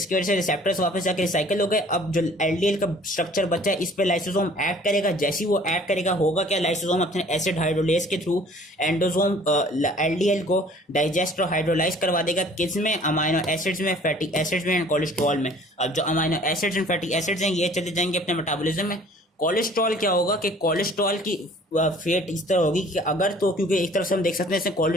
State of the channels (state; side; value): normal; both; correlation 0.52